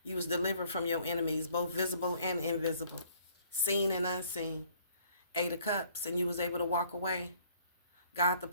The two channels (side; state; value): both; inverted; correlation -0.60